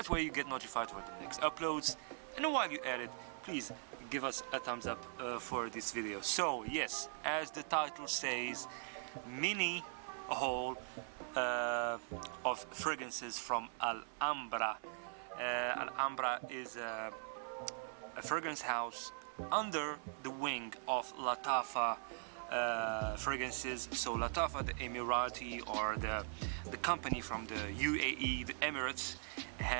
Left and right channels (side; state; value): left; silent; 50 dB below the other